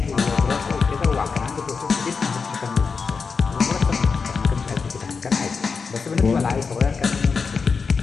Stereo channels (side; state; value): right; quieter; 5.1 dB